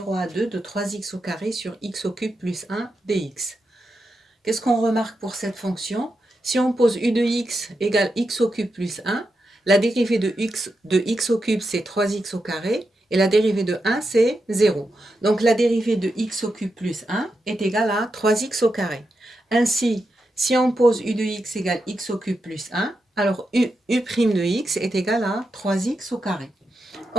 à 2 de 3x au carré sur x au cube plus 1 dx. Qu'est-ce qu'on remarque pour cette fonction? Si on pose u de x égale x au cube plus 1, la dérivée de x au cube c'est 3x au carré et la dérivée de 1 c'est 0. Donc la dérivée de x au cube plus 1 est égale à 3x au carré. Ainsi, si on pose u de x égale x au cube plus 1, alors u' de x est égal à 3x au carré.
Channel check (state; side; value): normal; both; correlation 0.87